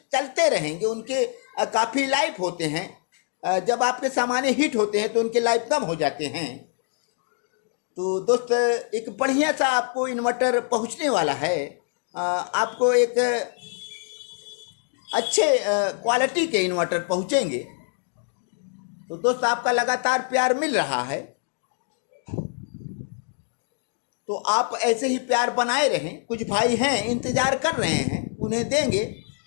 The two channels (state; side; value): silent; right; 62 dB below the other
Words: रहेंगे। उनके काफ़ी लाइफ होते हैं। जब आपके सामान्य हीट होते हैं तो उनके लाइफ कम हो जाते हैं। तो दोस्त एक बढ़िया सा आपको इन्वर्टर पहुंचने वाला है। आपको एक अच्छे क्वालिटी के इन्वर्टर पहुंचेंगे। तो दोस्त आपका लगातार प्यार मिल रहा है, तो आप ऐसे ही प्यार बनाए रहें। कुछ भाई हैं इंतज़ार कर रहे हैं, उन्हें देंगे।